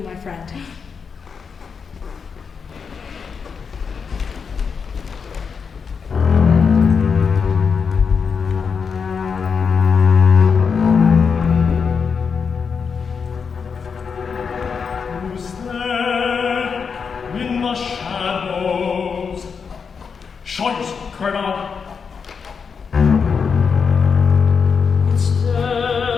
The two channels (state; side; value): quieter; right; 5.9 dB